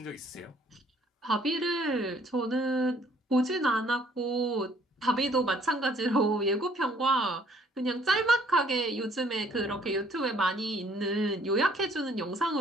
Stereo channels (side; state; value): both; normal; correlation 0.61